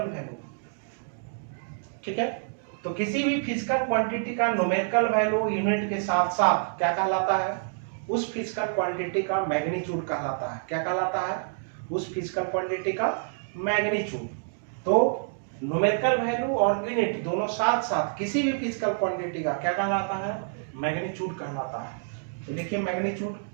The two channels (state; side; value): silent; left; digital silence